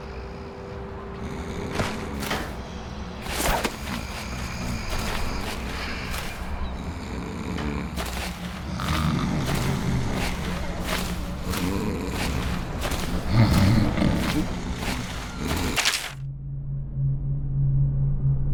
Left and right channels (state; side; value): identical; both; correlation 1.00